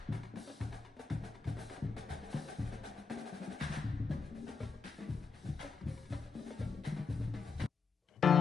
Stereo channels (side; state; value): right; quieter; 5.1 dB